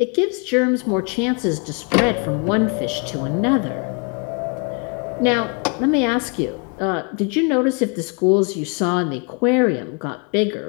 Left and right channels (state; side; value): quieter; right; 36.4 dB